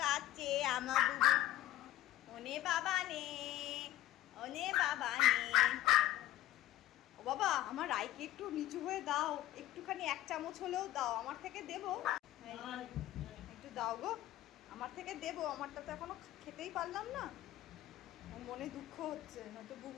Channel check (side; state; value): right; quieter; 14.0 dB